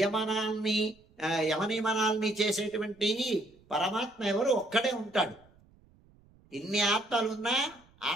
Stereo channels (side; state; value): right; noise; rumble, 29 dB below the sound